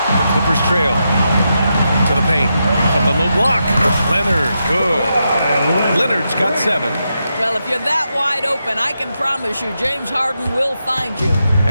Clippers trail to the paint from the low block. Leonard, good. Leonard's got 7. Well, if you're that wide open, I can promise you James Harden will find you.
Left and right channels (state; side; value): inverted; both; correlation -0.85